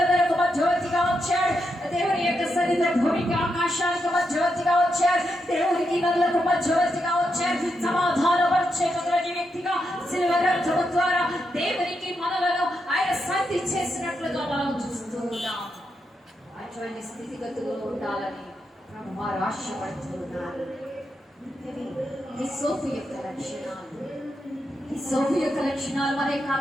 మధ్యవర్తిగా వచ్చాడు, దేవుని యొక్క సన్నిధిలో భూమికి ఆకాశానికి మధ్యవర్తిగా వచ్చాడు, దేవునికి నదులకు మధ్యవర్తిగా వచ్చాడు, సమాధానపరిచేటువంటి వ్యక్తిగా శిలువ రక్తము ద్వారా దేవునికి మనలను ఆయన శాంతి చేసినట్లుగా మనం చూస్తూ ఉన్నాం. అటువంటి స్థితిగతులు ఉండాలని ప్రభువారు ఆశపడుతూ ఉన్నారు. హిస్సోపు యొక్క లక్షణాలు, హిస్సోపు యొక్క లక్షణాలు మన యొక్క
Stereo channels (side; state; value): both; normal; correlation 0.84